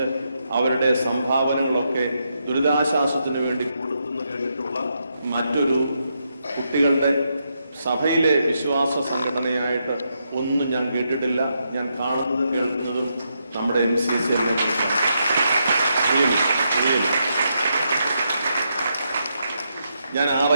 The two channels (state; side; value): inverted; both; correlation -0.81